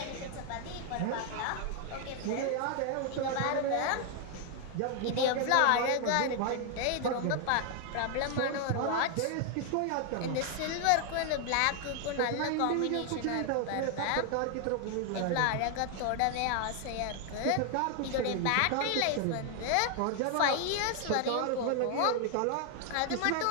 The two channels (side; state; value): both; different; correlation 0.00